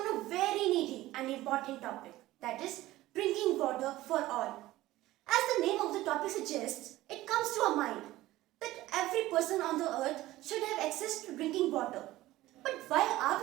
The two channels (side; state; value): left; quieter; 16.6 dB